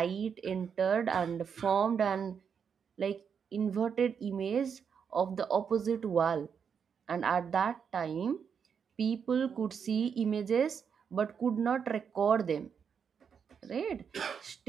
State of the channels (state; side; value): quieter; left; 6.9 dB